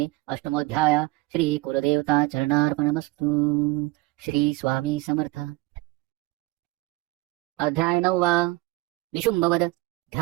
अष्टमोध्याय श्री कुलदेवता चरणार्पणमस्तु. श्री स्वामी समर्थ. अध्याय 9. निशुंभवद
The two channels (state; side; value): quieter; left; 20.7 dB